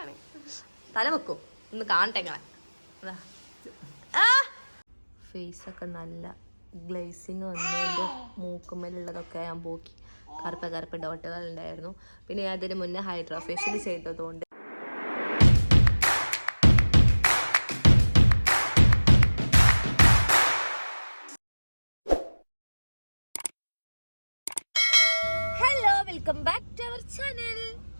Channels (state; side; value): inverted; both; correlation -1.00